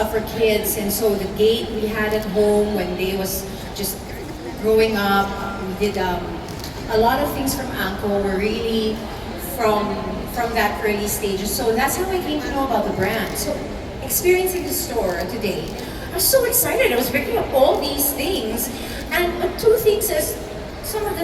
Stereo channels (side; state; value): both; identical; correlation 1.00